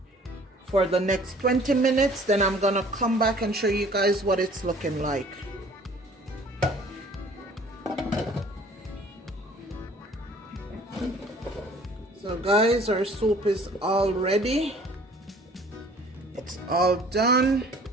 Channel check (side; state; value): both; normal; correlation 0.52